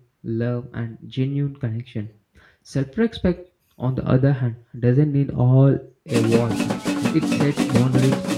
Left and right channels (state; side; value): identical; both; correlation 1.00